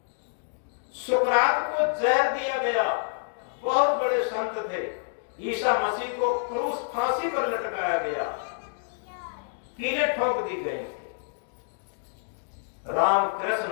सुकरात को जहर दिया गया, बहुत बड़े संत थे। ईसा मसीह को क्रूस, फांसी पर लटकाया गया, कीलें ठोक दी गई। राम,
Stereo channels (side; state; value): right; silent; digital silence